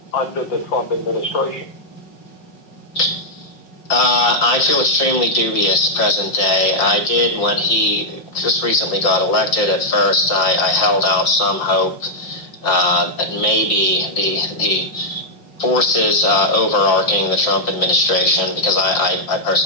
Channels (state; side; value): late; right; 5.6 ms